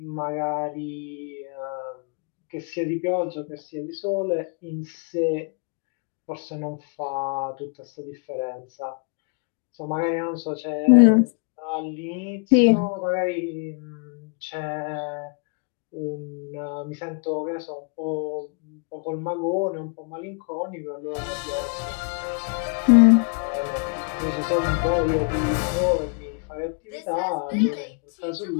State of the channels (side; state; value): right; quieter; 36.1 dB